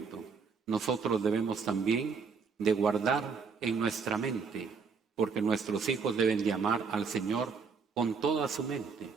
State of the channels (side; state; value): left; quieter; 5.4 dB